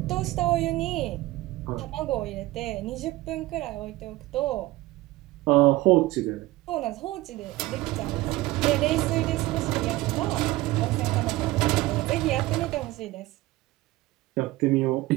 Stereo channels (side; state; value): left; quieter; 18.5 dB